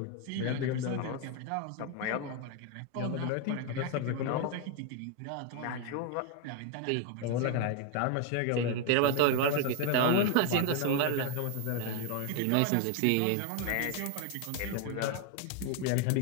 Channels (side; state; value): both; different; correlation 0.01